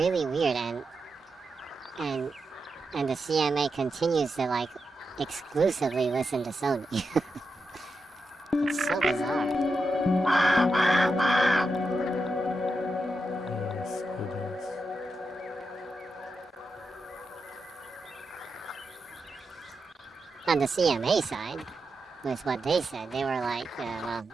weird, and the CMA continues to like exclusively listen to Sony. It's so bizarre. Yes, it is. On the CMA side, with what they said, they were like, well,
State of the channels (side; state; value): both; normal; correlation 0.87